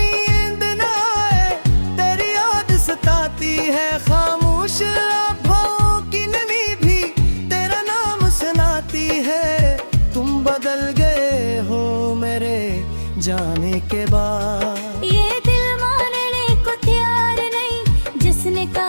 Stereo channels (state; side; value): inverted; both; correlation -1.00